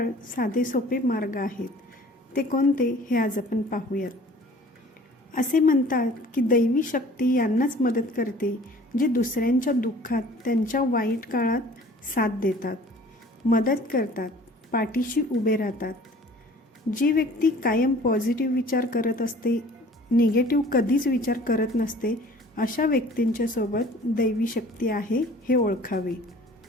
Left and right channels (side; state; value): both; normal; correlation 0.49